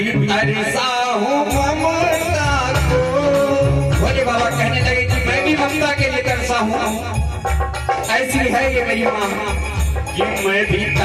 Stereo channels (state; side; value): identical; both; correlation 1.00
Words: तरसा हूँ ममता को। भोले बाबा कहने लगे कि मैं भी ममता के लिए तरसा हूँ। ऐसी है ये मेरी माँ कि मैं भी